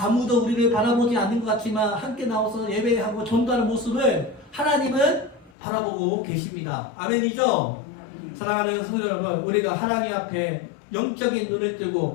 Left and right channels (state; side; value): drops out; right; at 5.5 s